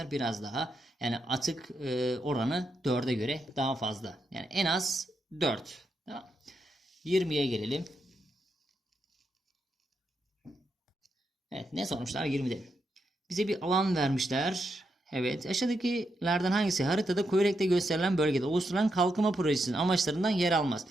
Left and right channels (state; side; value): normal; both; correlation 0.83